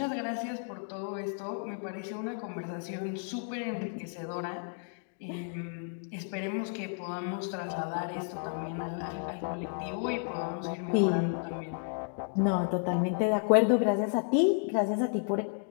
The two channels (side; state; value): right; silent; 56 dB below the other